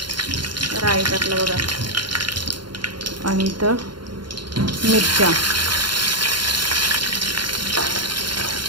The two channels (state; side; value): late; left; 0.72 ms